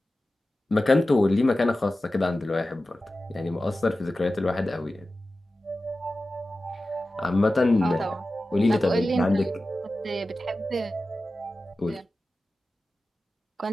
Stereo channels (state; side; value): normal; both; correlation 0.94